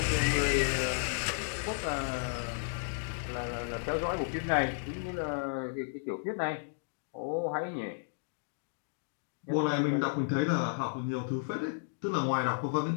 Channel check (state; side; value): silent; right; digital silence